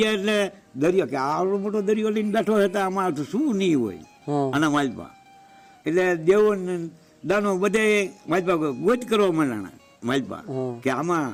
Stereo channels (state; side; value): identical; both; correlation 1.00